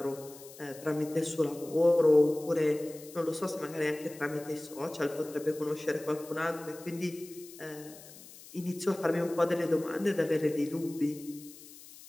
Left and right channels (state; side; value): noise; left; hiss, 18 dB below the sound